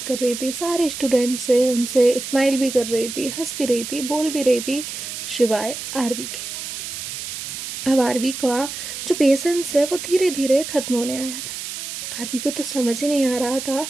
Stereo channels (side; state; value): right; noise; hiss, 7 dB below the sound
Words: कर रही थी, सारे स्टूडेंट से, उनसे स्माइल भी कर रही थी, हंस भी रही थी, बोल भी रही थी, सिवाय आरवी के। अब आरवी का जो पेशेंस है वो धीरे धीरे ख़त्म होने आया था। आरवी को तो समझ ही नहीं आ रहा था